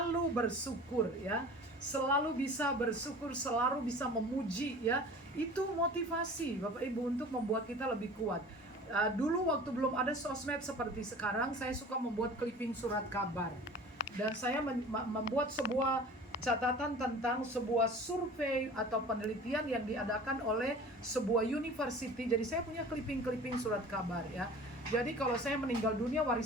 bersyukur ya, selalu bisa bersyukur, selalu bisa memuji ya. Itu motivasi Bapak Ibu untuk membuat kita lebih kuat. Dulu waktu belum ada sosmed seperti sekarang, saya suka membuat clipping surat kabar, dan saya membuat sebuah catatan tentang sebuah survei atau penelitian yang diadakan oleh sebuah university. Jadi saya punya clipping surat kabar ya. Jadi kalau saya meninggal dunia,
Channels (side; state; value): both; normal; correlation 0.42